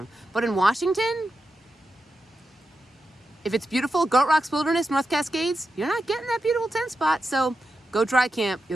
But in Washington, if it's beautiful, Goat Rocks Wilderness, North Cascades, you're not getting that beautiful tent spot. So go dry camp.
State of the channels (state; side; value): normal; both; correlation 0.88